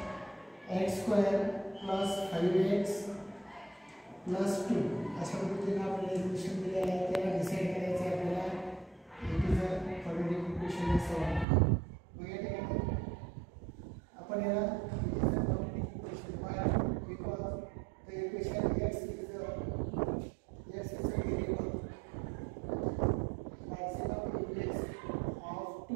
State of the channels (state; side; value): drops out; left; at 11.5 s